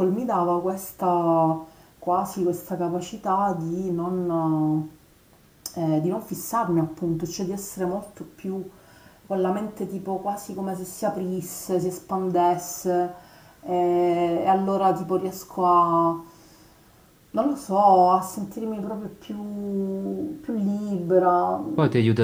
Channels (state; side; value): identical; both; correlation 1.00